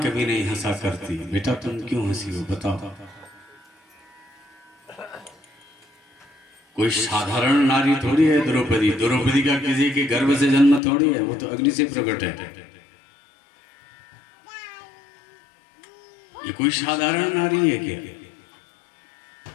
नहीं हंसा करती। बेटा तुम क्यों हंसी हो बताओ। कोई साधारण नारी थोड़ी है द्रौपदी। द्रौपदी का किसी के गर्भ से जन्म थोड़ी है, वो तो अग्नि से प्रकट है। ये कोई साधारण नारी है क्या?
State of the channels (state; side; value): drops out; right; at 10.8 s